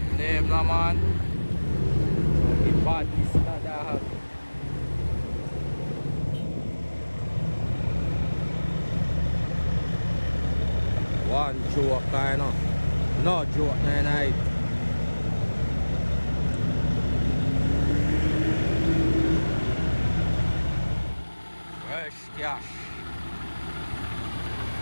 Name no man. The badness that I have. One joke kind of. No joke night. Cash.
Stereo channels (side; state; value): both; inverted; correlation -1.00